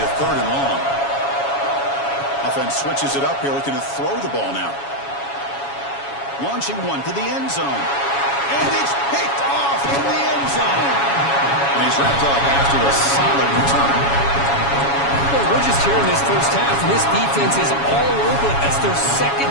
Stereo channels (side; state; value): right; late; 7.2 ms